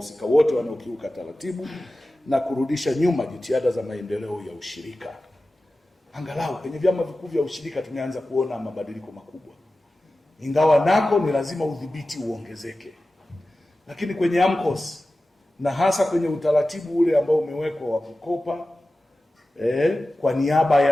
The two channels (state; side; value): normal; both; correlation 0.95